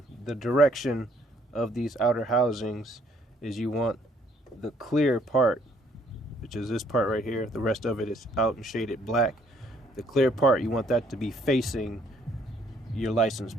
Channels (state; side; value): normal; both; correlation 0.65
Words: the direction of these outer housings is you want the clear part, which is this part right here, the rest of it is out and shaded black. The clear part, you want that to be facing your license